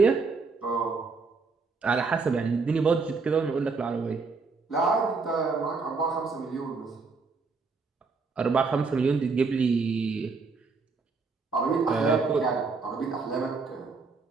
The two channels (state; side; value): quieter; left; 4.4 dB